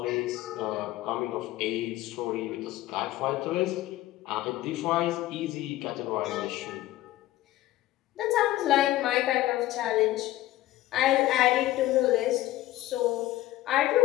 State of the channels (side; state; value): right; quieter; 15.4 dB